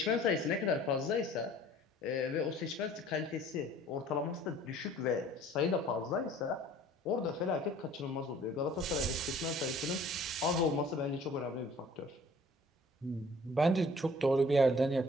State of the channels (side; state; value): both; normal; correlation 0.52